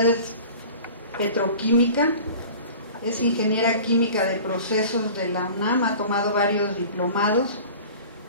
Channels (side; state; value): both; inverted; correlation -0.42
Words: es petroquímica. Es ingeniera química de procesos de la UNAM, ha tomado varios diplomados.